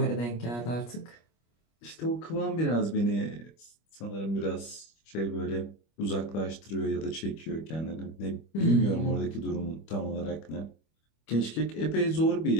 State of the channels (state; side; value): late; right; 25 ms